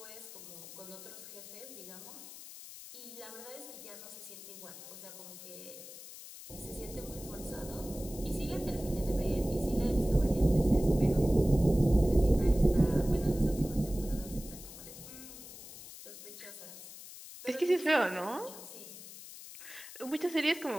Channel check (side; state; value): left; noise; hiss, 14 dB below the sound